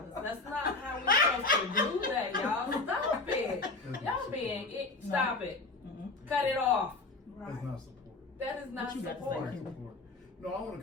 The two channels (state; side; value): quieter; right; 3.5 dB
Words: That's not how we're supposed to do that, y'all. Stop it. Y'all being it. Stop it. Cut it off. That's not support. That is not What you got to support. say? Support. No, I want to